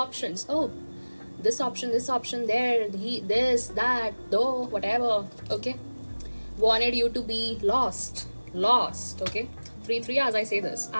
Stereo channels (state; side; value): inverted; both; correlation -1.00